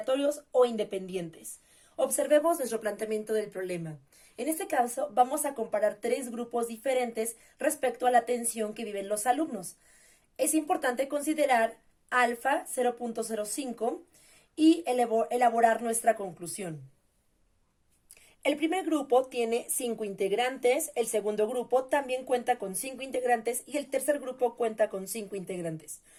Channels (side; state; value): both; identical; correlation 1.00